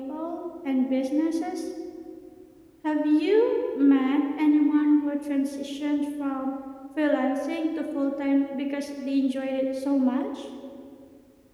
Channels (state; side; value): identical; both; correlation 1.00